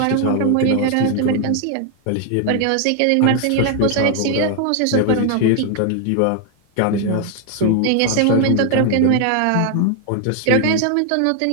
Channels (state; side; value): different; both; correlation 0.00